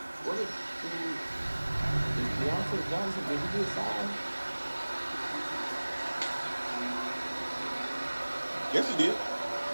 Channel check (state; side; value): inverted; both; correlation -1.00